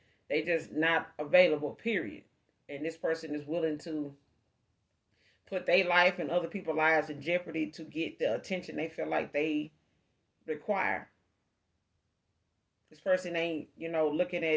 they just not available, period. And this person is willing to put their life and other people's lives in jeopardy to get the attention they feel like they require. This person ain't, looking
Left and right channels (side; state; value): both; identical; correlation 1.00